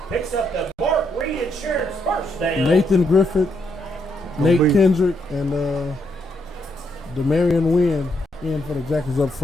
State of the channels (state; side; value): normal; both; correlation 0.77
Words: picks up the Mark Reed Insurance first down. Nathan Griffith, Nate Kendrick, and Demarion Wynn in for the Jackets up